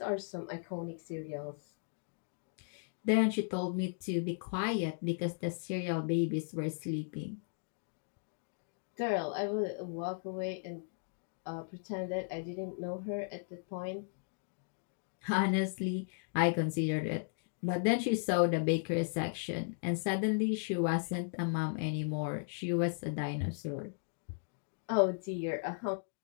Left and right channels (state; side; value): silent; right; digital silence